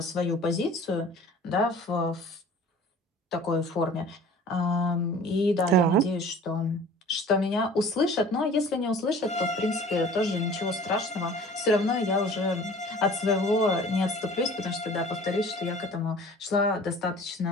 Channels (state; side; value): normal; both; correlation 0.46